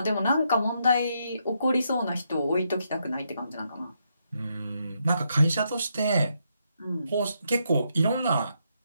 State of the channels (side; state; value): both; inverted; correlation -0.78